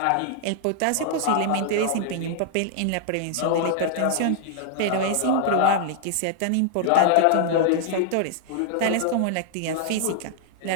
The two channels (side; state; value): both; different; correlation -0.01